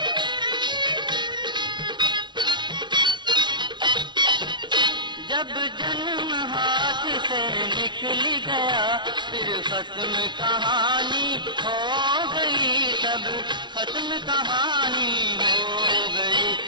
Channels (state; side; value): late; left; 0.22 ms